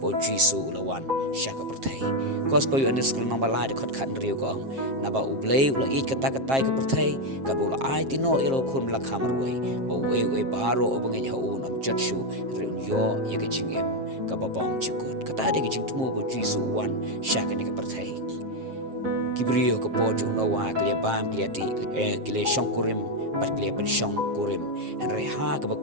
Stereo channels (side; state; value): left; late; 7.5 ms